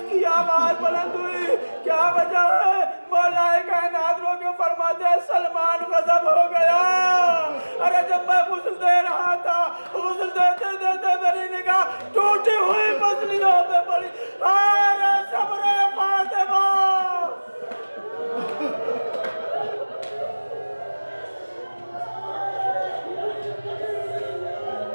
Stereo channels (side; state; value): both; inverted; correlation -1.00